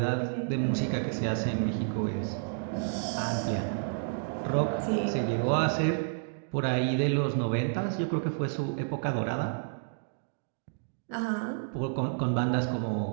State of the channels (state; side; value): silent; left; digital silence